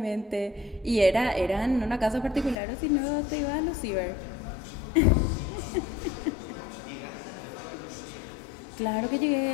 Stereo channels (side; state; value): right; drops out; at 2.6 s